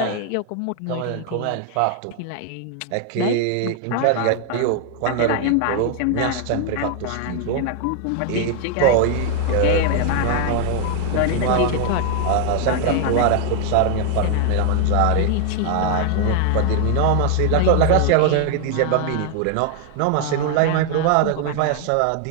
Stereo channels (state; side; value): different; both; correlation 0.00